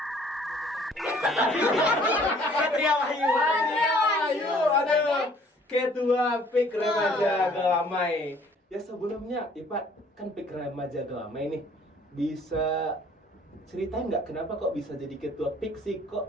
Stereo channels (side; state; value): both; normal; correlation 0.57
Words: Patria Wahyu. Aduh. Ketua PIK Remaja Gelamai. Ya sebelumnya, Ipat, kan PIK Remaja Gelamai nih. Bisa ceritain nggak kenapa kok bisa jadi ketua PIK sih?